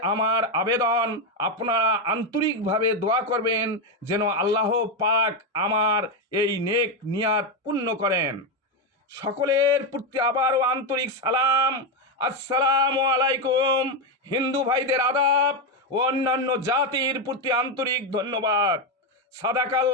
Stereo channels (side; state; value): both; normal; correlation 0.07